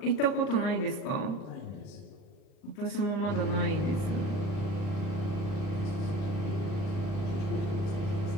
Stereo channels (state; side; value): late; right; 39 ms